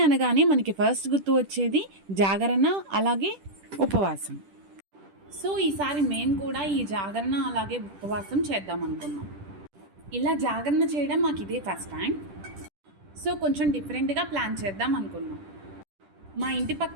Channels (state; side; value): late; left; 10 ms